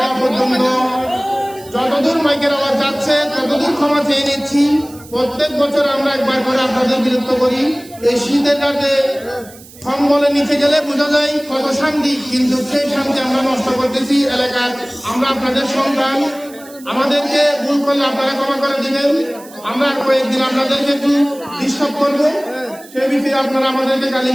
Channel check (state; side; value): noise; right; hiss, 21 dB below the sound